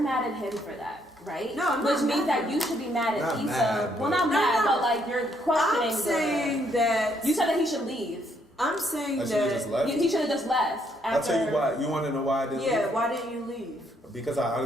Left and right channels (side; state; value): both; normal; correlation 0.71